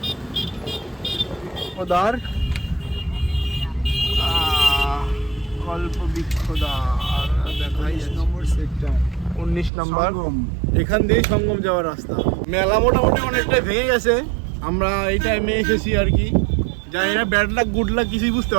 কল্পবৃক্ষদ্বার দেখাই নম্বর সেক্টর 19 নাম্বার। এখান দিয়ে সঙ্গম যাওয়ার রাস্তা। মেলা মোটামুটি অনেকটাই ভেঙে গেছে, আমরা এই টাইমে এসেছি আর কি। জানি না ব্যাড লাক গুড লাক কিছুই বুঝতে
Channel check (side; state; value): left; drops out; at 9.7 s